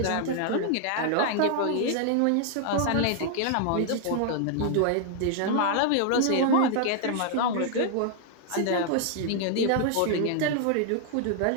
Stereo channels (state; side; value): different; both; correlation 0.00